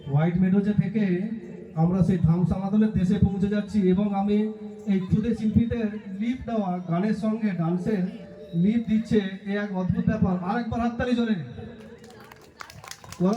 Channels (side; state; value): both; identical; correlation 1.00